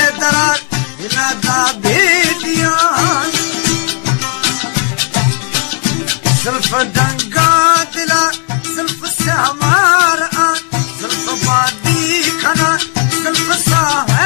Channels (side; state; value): right; quieter; 34.8 dB